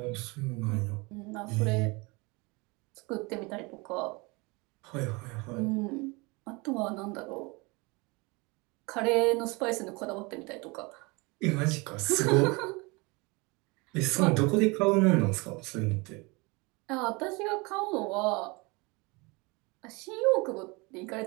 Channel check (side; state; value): left; quieter; 26.8 dB